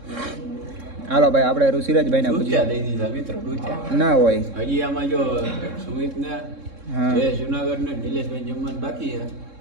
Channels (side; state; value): left; late; 3.7 ms